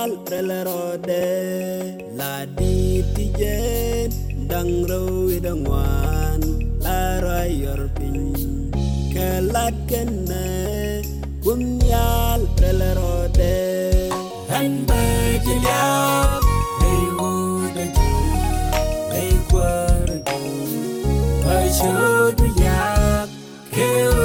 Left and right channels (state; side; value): identical; both; correlation 1.00